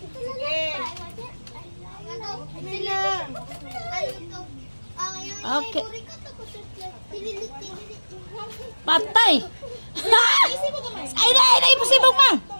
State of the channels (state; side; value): inverted; both; correlation -1.00